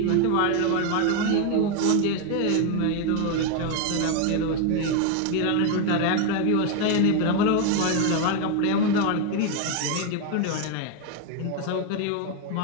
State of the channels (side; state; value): both; different; correlation 0.01